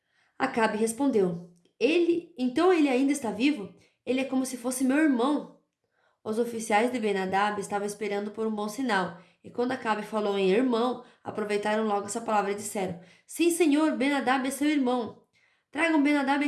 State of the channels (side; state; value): both; identical; correlation 1.00